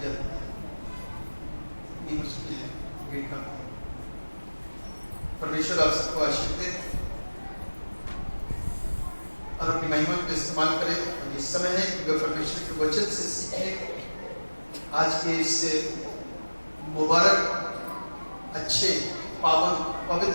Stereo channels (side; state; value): both; inverted; correlation -1.00